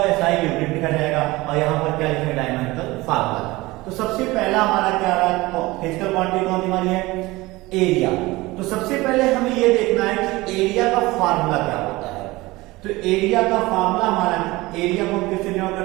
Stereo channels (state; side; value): quieter; left; 20.6 dB